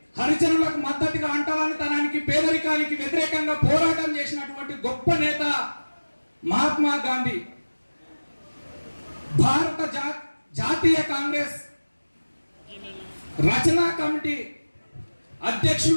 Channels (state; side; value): inverted; both; correlation -1.00